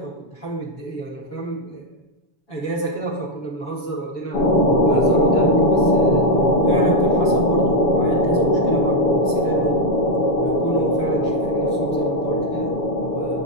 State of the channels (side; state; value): right; late; 7.0 ms